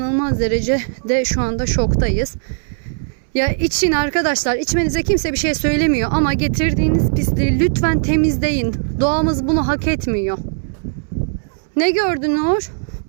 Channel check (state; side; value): silent; left; 67 dB below the other